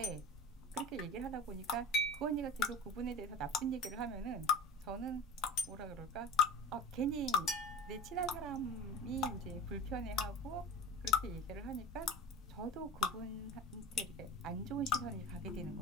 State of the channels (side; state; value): both; normal; correlation 0.33